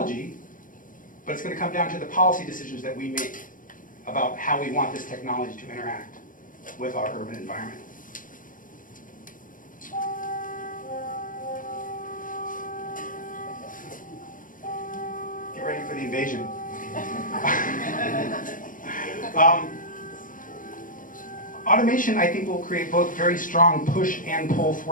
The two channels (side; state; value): right; late; 0.39 ms